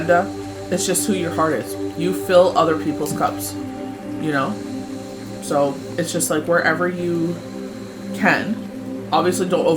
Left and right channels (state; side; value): identical; both; correlation 1.00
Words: It's just who your heart is. You fill other people's cups. So it's just like wherever you can. Obviously, don't